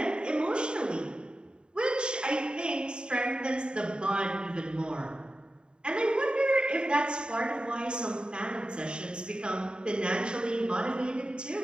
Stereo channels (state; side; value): late; left; 0.050 ms